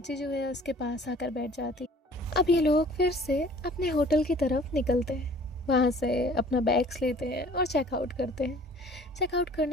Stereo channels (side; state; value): both; normal; correlation 0.51